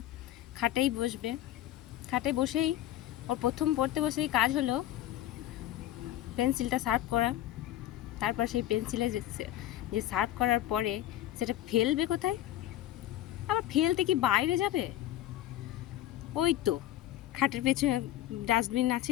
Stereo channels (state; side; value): quieter; right; 13.6 dB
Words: খাটেই বসবে। খাটে বসেই ওর প্রথম পড়তে বসেই কাজ হলো পেন্সিলটা শার্প করা। তারপর সেই পেন্সিলে যে শার্প করার পরে সেটা ফেলবে কোথায়? আবার ফেলতে কি বাইরে যাবে? ওই তো খাটের পেছনে ডাস্টবিন